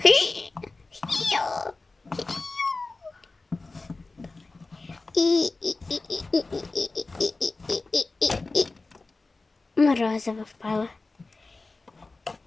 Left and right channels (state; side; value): quieter; right; 3.5 dB